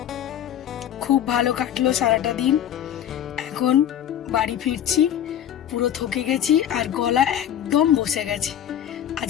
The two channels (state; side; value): quieter; right; 10.4 dB